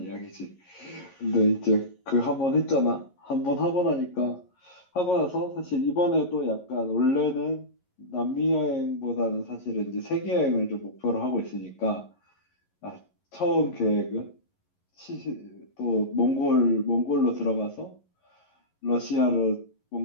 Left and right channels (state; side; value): late; right; 11 ms